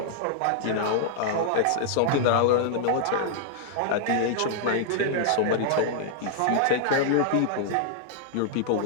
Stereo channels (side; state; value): both; different; correlation -0.01